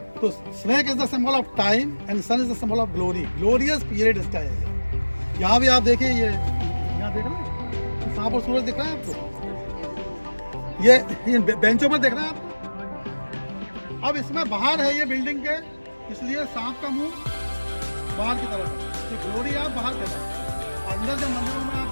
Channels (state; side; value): inverted; both; correlation -1.00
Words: तो snake is the symbol of time and sun is the symbol of glory, glorious period इसका है। यहाँ भी आप देखिए, ये यहाँ देख रहे हैं सांप और सूरज दिख रहा है आपको, ये बेंचों पर देख रहे हैं आप। अब इसमें बाहर है ये बिल्डिंग के, इसलिए सांप का मुंह बाहर की तरफ है, ये ग्लोरी आप बाहर देना। अंदर जब मंदिरों में आप